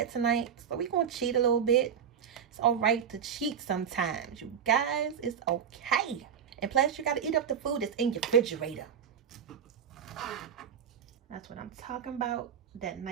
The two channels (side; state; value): left; quieter; 7.9 dB